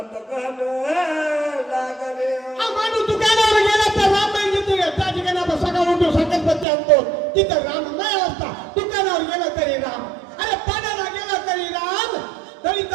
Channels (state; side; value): drops out; left; at 6.7 s